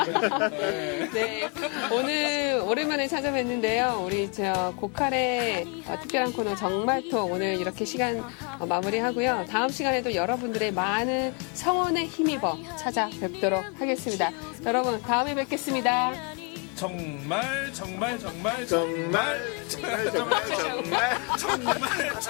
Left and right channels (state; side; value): quieter; right; 34.9 dB